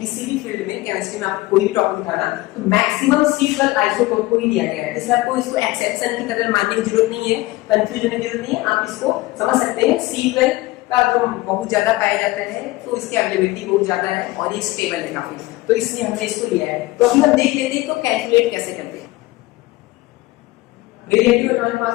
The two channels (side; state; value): right; quieter; 19.7 dB